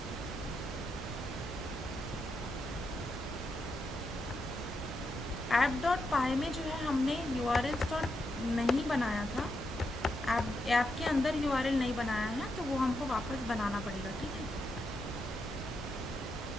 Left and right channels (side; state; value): both; normal; correlation 0.83